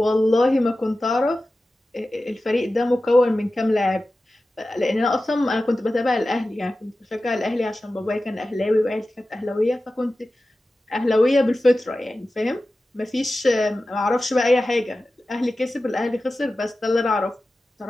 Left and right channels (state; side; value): normal; both; correlation 0.95